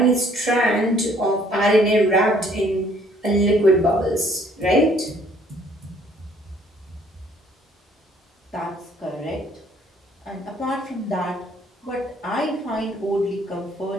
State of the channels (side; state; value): both; normal; correlation 0.61